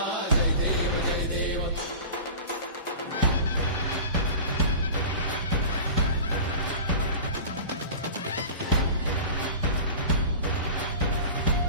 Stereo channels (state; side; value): inverted; both; correlation -0.35